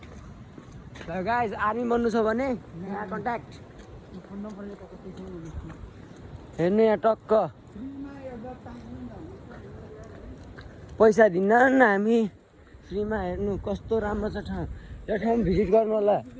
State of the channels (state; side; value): identical; both; correlation 1.00